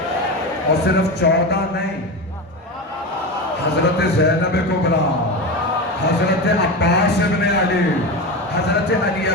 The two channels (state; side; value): normal; both; correlation 0.21